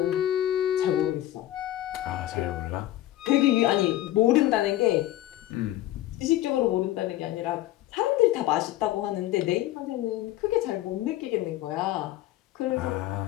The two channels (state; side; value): quieter; right; 14.5 dB